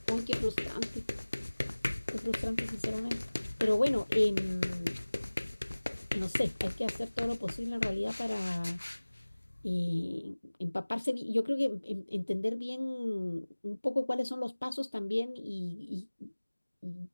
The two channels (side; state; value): both; inverted; correlation -1.00